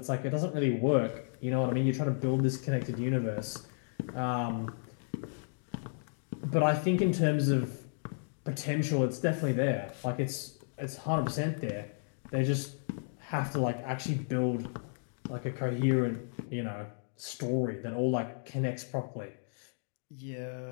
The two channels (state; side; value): silent; right; digital silence